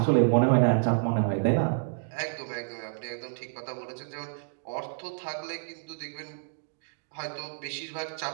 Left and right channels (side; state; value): left; silent; digital silence